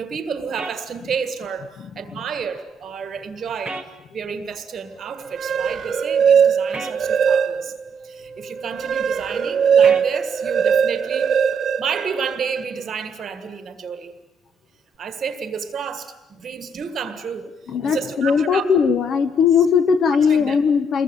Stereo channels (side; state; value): both; normal; correlation 0.71